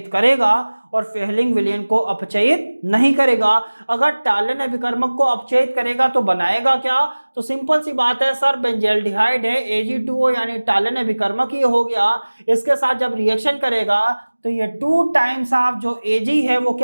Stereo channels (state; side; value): inverted; both; correlation -1.00